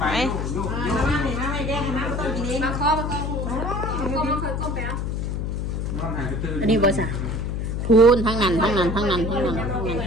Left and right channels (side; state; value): left; noise; hum, 2 dB below the sound